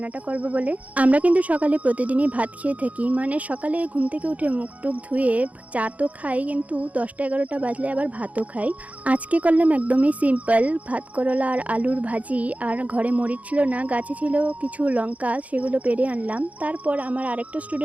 করব বলে। আমরা কিন্তু সকালে প্রতিদিনই ভাত খেয়ে থাকি, মানে সকালে ঘুম থেকে উঠে মুখ টুক ধুয়ে চা তো খাই, কিন্তু 10টা-11টা বাজলে আবার ভাতও খাই। আজকে করলাম একদমই সিম্পল ভাত, করলা আর আলুর ভাজি। আর ঘরে মরিচ ছিল না, গাছে ছিল কিছু লঙ্কা, সেগুলো পেড়ে আনলাম। তারপর আমার আরেকটা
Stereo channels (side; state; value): left; late; 0.070 ms